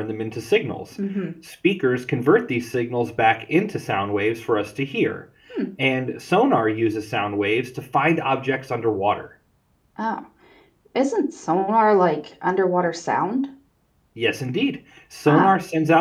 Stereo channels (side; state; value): both; identical; correlation 1.00